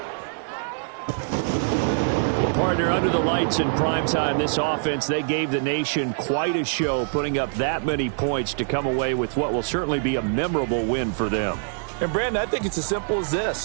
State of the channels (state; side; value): silent; left; 62 dB below the other